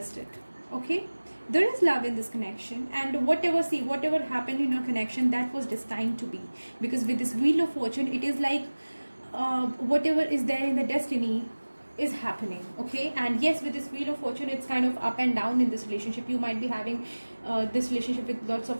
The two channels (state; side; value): inverted; both; correlation -1.00